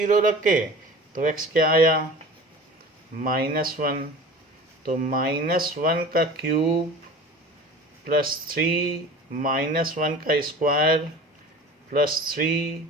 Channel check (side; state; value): both; normal; correlation 0.39